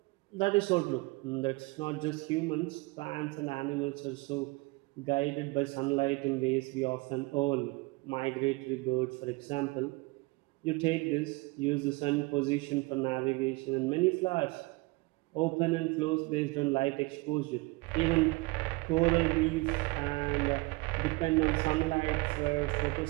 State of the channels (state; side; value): quieter; left; 24.7 dB